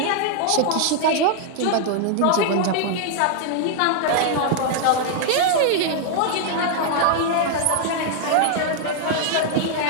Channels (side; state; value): both; different; correlation 0.00